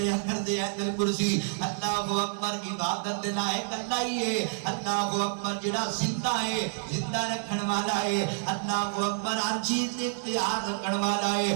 کر دے، آیت الکرسی اللہ اکبر، عبادت لائق اللہ ہی ہے، اللہ اکبر جڑا زندہ ہے، زندہ رکھن والا ہے، اللہ اکبر ہر چیز اختیار رکھن والا ہے۔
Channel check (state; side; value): silent; left; 59 dB below the other